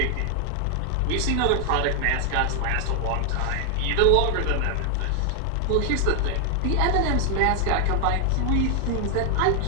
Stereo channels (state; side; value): different; both; correlation 0.00